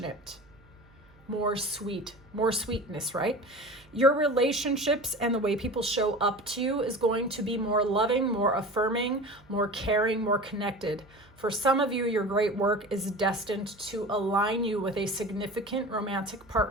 more sweetness, right? Your relationships and the way people show up to you is going to be more loving, more affirming, more caring, more connected. For some of you, your great work is destined to align you with a significant romantic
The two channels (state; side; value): noise; right; hum, 28 dB below the sound